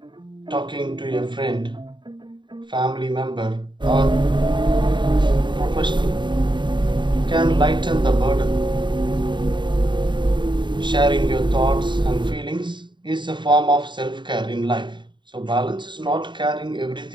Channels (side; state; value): left; late; 0.23 ms